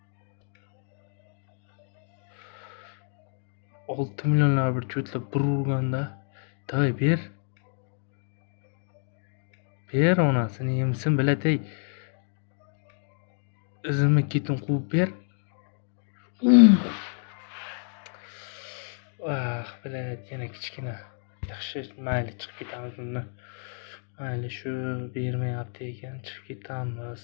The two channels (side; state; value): right; silent; 59 dB below the other